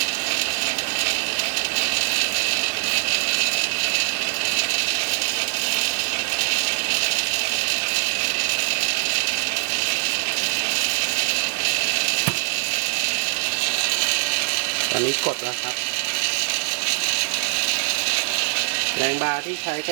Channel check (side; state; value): left; silent; 64 dB below the other